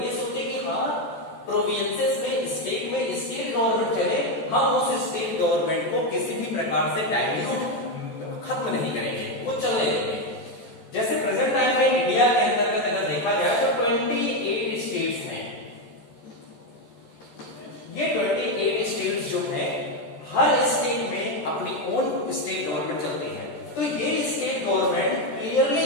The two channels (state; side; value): late; right; 14 ms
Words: ये सोचे कि हाँ प्रोविंसेस में, स्टेट में स्टेट गवर्नमेंट चले, हम उस स्टेट गवर्नमेंट को किसी भी प्रकार से डाइल्यूट खत्म नहीं करेंगे, वो चलने देंगे। जैसे प्रेजेंट टाइम में इंडिया के अंतर्गत अगर देखा जाए तो 28 स्टेट्स हैं। ये 28 स्टेट्स जो हैं, हर स्टेट में अपनी ओन स्टेट गवर्नमेंट चलती है। तो ये स्टेट गवर्नमेंट क्लियरली